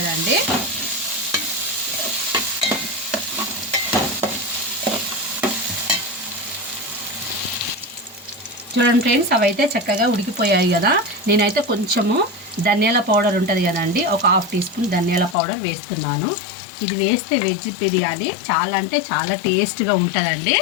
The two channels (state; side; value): drops out; right; at 15.4 s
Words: చూడండి ఫ్రెండ్స్, అవైతే చక్కగా ఉడికిపోయాయి కదా. నేనైతే కొంచెము ధనియాల పౌడర్ ఉంటుంది కదండి, ఒక 1/2 టీ స్పూన్ ధనియాల పౌడర్ వేస్తున్నాను. ఇది వేస్తే వెజ్ బిర్యానీ చాలా అంటే చాలా టేస్ట్గా ఉంటుందండి.